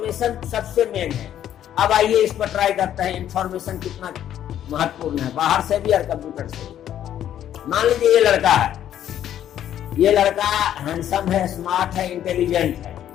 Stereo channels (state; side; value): quieter; right; 10.8 dB